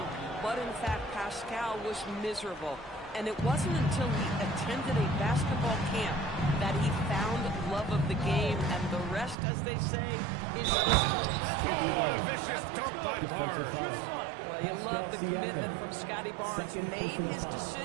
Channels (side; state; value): left; drops out; at 9.3 s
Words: but in fact, Pascal was miserable. And it wasn't until he attended a basketball camp that he found love of the game, and the rest, as they say, is history. What a vicious dunk by Barnes. Well, you love the commitment from Scotty Barnes. Made his